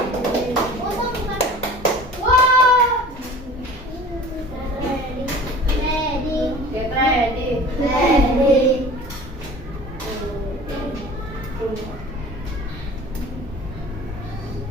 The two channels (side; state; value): both; normal; correlation 0.42